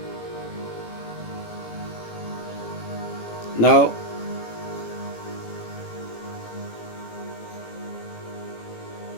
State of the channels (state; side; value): late; right; 18 ms